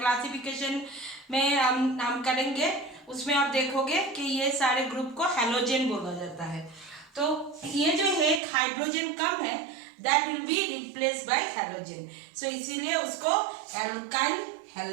में हम करेंगे, उसमें आप देखोगे कि ये सारे ग्रुप को हैलोजन बोला जाता है. तो ये जो है हाइड्रोजन कम है, that will be replace by halogen, so इसीलिए उसको एल्काइल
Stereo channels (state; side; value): drops out; left; at 8.4 s